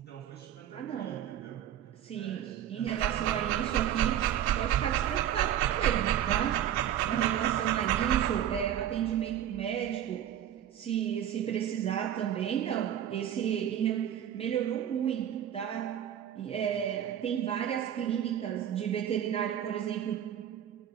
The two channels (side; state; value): left; quieter; 10.5 dB